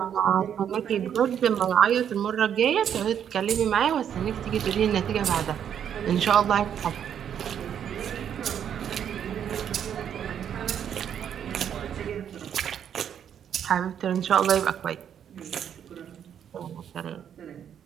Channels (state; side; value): quieter; left; 8.9 dB